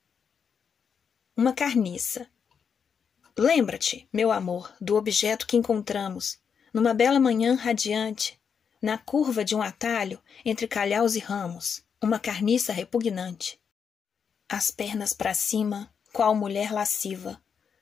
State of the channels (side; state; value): right; quieter; 6.7 dB